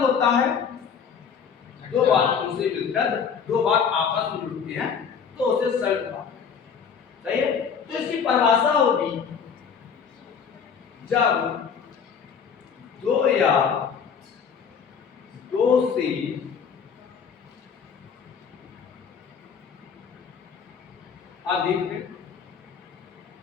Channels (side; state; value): right; quieter; 6.7 dB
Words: होता है दो बातों से मिलकर दो बात आपस में जुड़ती हैं, तो उसे संयुक्त वाक्य। सही है? तो इसकी परिभाषा होगी जब दो या दो से अधिक